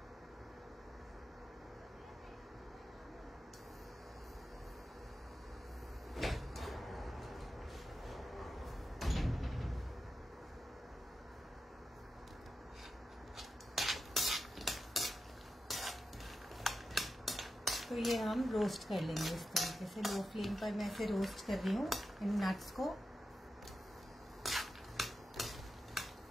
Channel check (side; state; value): both; normal; correlation 0.90